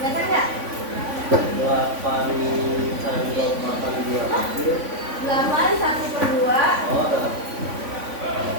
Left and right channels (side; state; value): left; late; 3.5 ms